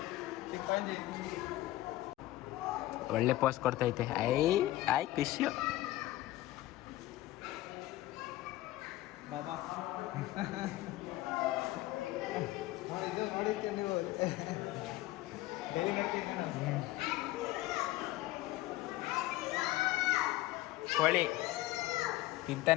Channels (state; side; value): quieter; right; 16.5 dB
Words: ಒಳ್ಳೆ ಪೋಸ್ಟ್ ಕೊಡ್ತೈತೆ. ಐ ಖುಷಿ. ಬಾಬಾ ಇದು ನೋಡಿರ್ತೀವಿ ನೀವು ಡೈಲಿ ನೋಡ್ತೀವಿ ನಾನು. ಕೋಳಿ